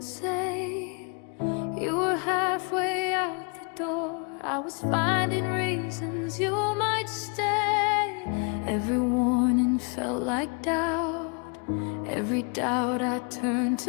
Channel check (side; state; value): right; quieter; 36.6 dB